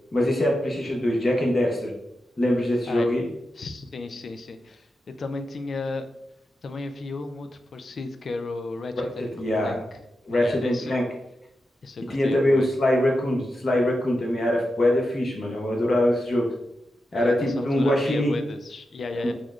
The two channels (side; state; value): both; normal; correlation 0.89